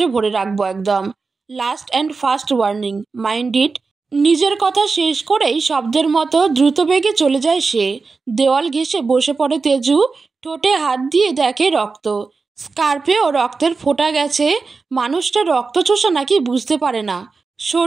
ভরে রাখবো একদম। Last and first warning, mind it. নিজের কথা শেষ করেই শব্দের মতো দ্রুত বেগে চলে যায় সে। দেওয়াল ঘেঁষে বসে পড়ে তেজু। ঠোঁটে হাত দিয়ে দেখে রক্ত। স্কার্পেও রক্তের ফোঁটা গেছে। মানুষটা রক্ত চোষা নাকি বুঝতে পারে না।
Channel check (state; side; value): quieter; left; 4.4 dB